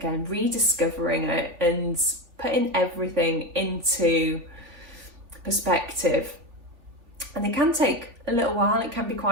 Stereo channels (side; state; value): left; late; 3.5 ms